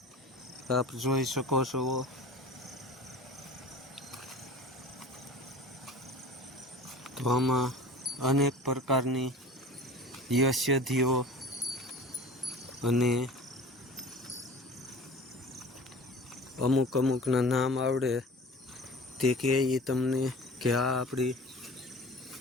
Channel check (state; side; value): normal; both; correlation 0.41